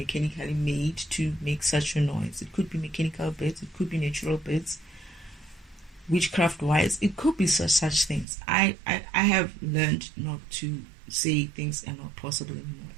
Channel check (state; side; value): drops out; left; at 8.2 s